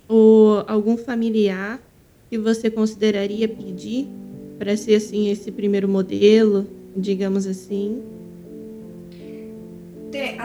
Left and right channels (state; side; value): identical; both; correlation 1.00